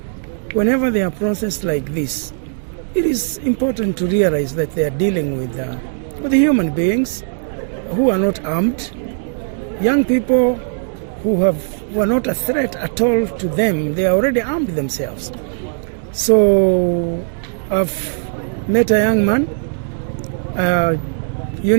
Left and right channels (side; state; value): left; silent; digital silence